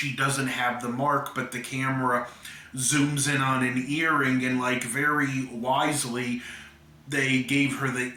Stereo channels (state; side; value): identical; both; correlation 1.00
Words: doesn't have the mark, but the camera zooms in on an earring, and like very wisely they gave her the